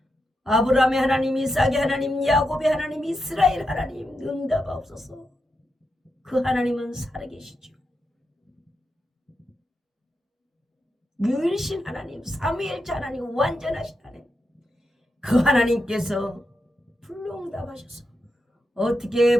아브라함의 하나님, 이삭의 하나님, 야곱의 하나님, 이스라엘 하나님 응답하옵소서. 그 하나님은 살아계시죠. 유일신 하나님, 삼위일체 하나님, 완전하신 하나님, 그 하나님께서 불로 응답하셔서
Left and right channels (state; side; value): normal; both; correlation 0.86